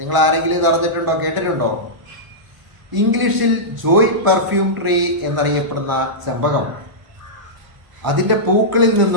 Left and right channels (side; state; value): left; late; 1.0 ms